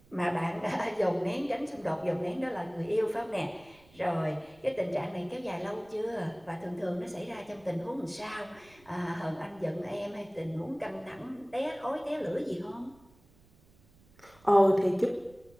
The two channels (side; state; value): right; noise; rumble, 28 dB below the sound